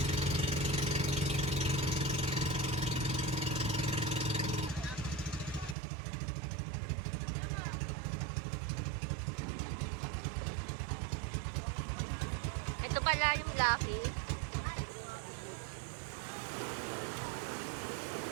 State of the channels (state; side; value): drops out; left; at 5.8 s